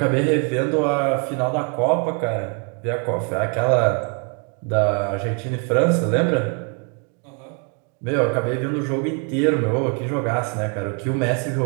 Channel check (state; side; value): quieter; left; 37.4 dB